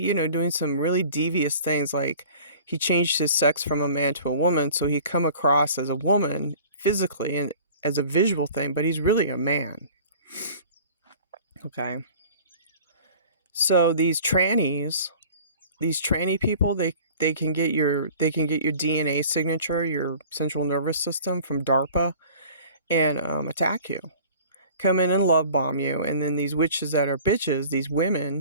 doing some really devious things, like he changed his sex from a man to a woman, so he come across as a woman physically and as a visual thing, but he's really a man. Okay. So these tranny people, they can get your DNA signature, your central nervous system, from DARPA, and attack you, come in and love bomb you. And then these witches that are bitches, these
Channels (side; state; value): both; inverted; correlation -0.45